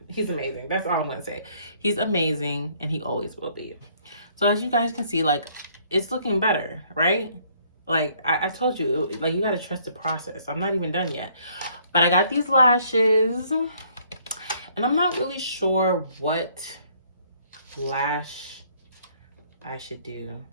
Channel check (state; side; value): inverted; both; correlation -0.63